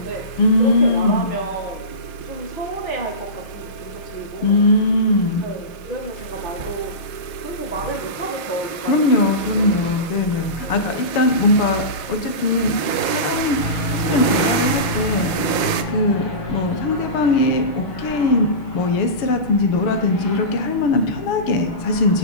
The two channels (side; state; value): right; late; 6.4 ms